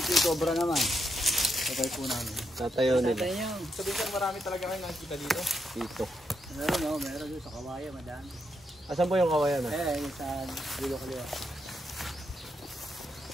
Cobra naman? Patay po namin. Tatayo nila. Patay niyo. Sabi ko marami talaga kayo nakikita dito. Dito. Meron doon sa Kawayan, madami. Asan po yung kawayan ah? Yung sa Dulo Kaliwa.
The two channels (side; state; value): both; normal; correlation 0.81